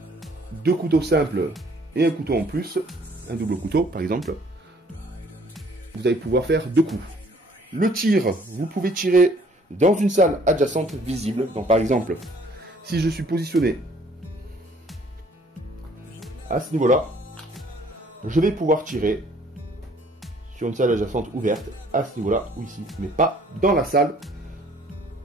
2 couteaux simples et un couteau en plus, un double couteau par exemple, vous allez pouvoir faire 2 coups. Le tir, vous pouvez tirer dans une salle adjacente visible. Donc par exemple, si je suis positionné à ce niveau-là, je vais pouvoir tirer sur une salle adjacente ouverte à ce niveau-là ou ici, mais pas dans la salle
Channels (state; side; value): normal; both; correlation 0.59